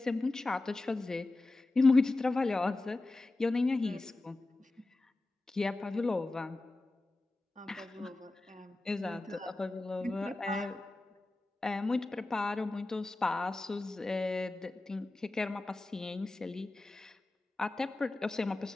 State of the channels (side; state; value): right; quieter; 3.0 dB